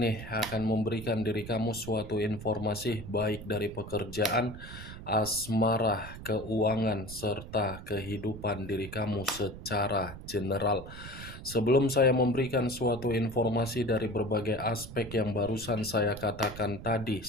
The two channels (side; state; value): right; noise; rumble, 12 dB below the sound